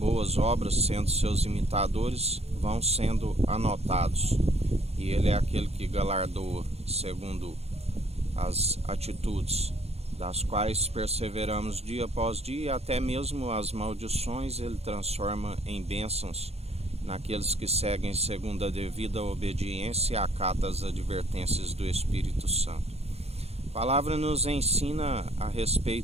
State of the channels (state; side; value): late; left; 0.30 ms